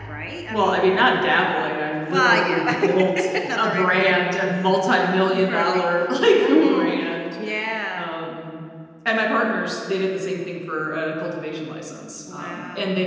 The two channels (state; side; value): identical; both; correlation 1.00